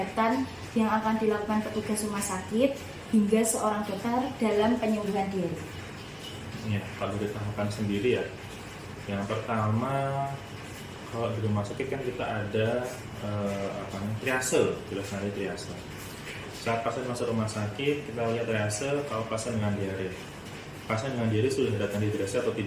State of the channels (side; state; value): both; identical; correlation 1.00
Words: yang akan dilakukan petugas rumah sakit hingga seorang dokter dalam penyembuhan diare? Ya, kalau ditahapan sendiri ya, yang pertama kalau di rumah sakit kan kita ada triase, jelas ada triase. Saat pasien masuk rumah sakit, kita lihat triase kalau pasien dengan diare. Pasien dengan diare sudah datang dehidrasi atau